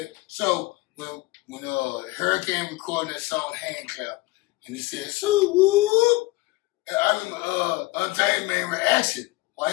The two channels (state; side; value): quieter; right; 20.7 dB